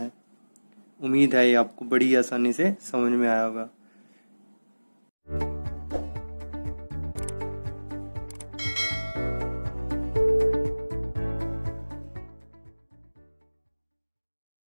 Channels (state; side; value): inverted; both; correlation -1.00